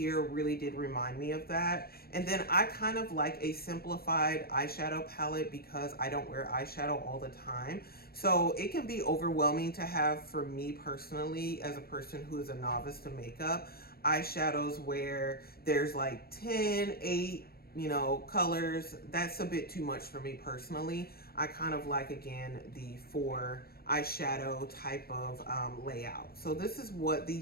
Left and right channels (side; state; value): right; late; 0.45 ms